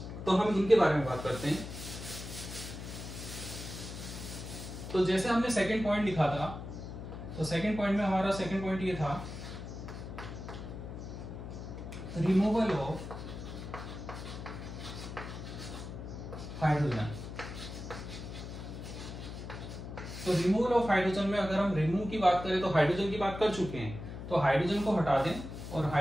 तो हम इनके बारे में बात करते हैं। तो जैसे हमने सेकंड पॉइंट लिखा था, तो सेकंड पॉइंट में हमारा सेकंड पॉइंट ये था, रिमूवल ऑफ हाइड्रोजन। तो रिमूवल ऑफ हाइड्रोजन में अगर हम रिमूव की बात करें तो हाइड्रोजन की बात कर चुके हैं, तो हाइड्रोजन को हटा दें और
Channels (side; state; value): left; noise; hum, 9 dB below the sound